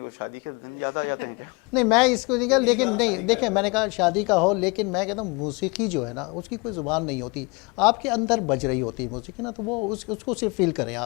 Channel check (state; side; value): quieter; right; 28.7 dB